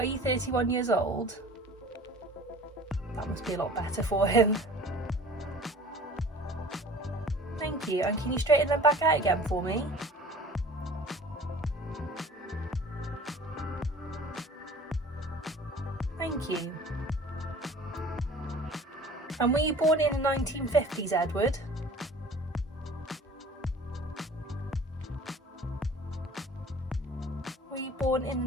you 31 years old? That must be a lot better for him. Thank you. And can you straighten them back out again for me? Thank you. And were you born in the 1950s, Edward? Were you born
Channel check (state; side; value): normal; both; correlation 0.45